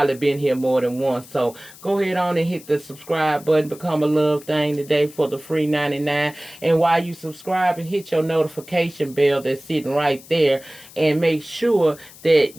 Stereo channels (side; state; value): left; noise; hiss, 20 dB below the sound